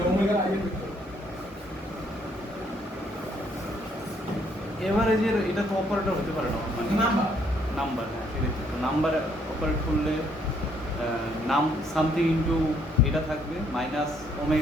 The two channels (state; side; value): normal; both; correlation 0.68